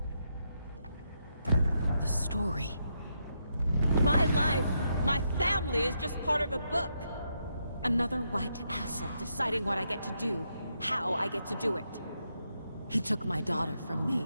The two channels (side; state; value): both; inverted; correlation -0.81